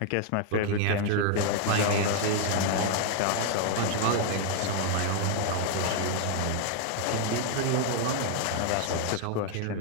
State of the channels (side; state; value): both; different; correlation 0.00